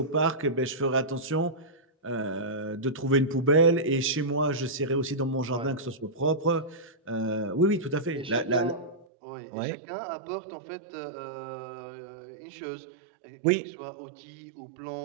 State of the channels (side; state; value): left; drops out; at 9.1 s